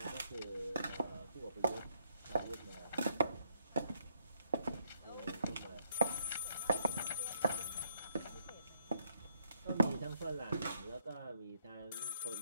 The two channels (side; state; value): both; inverted; correlation -0.74